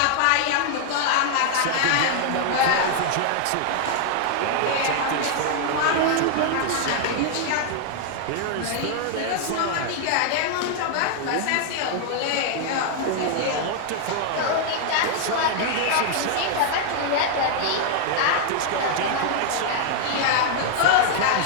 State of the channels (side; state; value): both; different; correlation 0.00